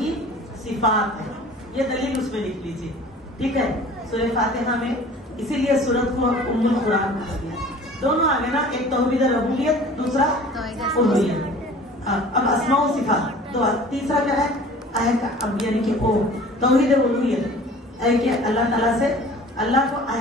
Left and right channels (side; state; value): both; normal; correlation 0.46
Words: صفات ہے. یہ دلیل اس میں لکھ لیجیے. ٹھیک ہے, سورہ فاتحہ میں اسی لیے سورت کو ام القرآن کہا گیا. دونوں آگے نا, ایک توحید ربوبیت دوسرا الوہیت. اب اسماء و صفات تو تیسرا کیا ہے یعنی کہ او توحید الوہیت ہے کہ اللہ تعالیٰ سے اللہ کو